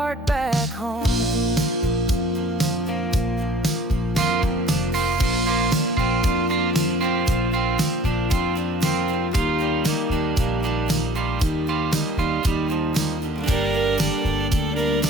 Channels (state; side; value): normal; both; correlation 0.52